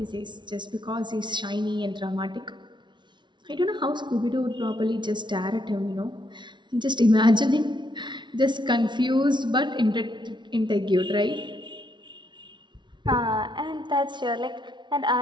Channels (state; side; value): late; left; 0.23 ms